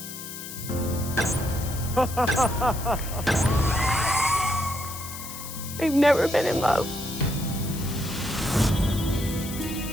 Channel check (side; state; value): left; noise; hiss, 10 dB below the sound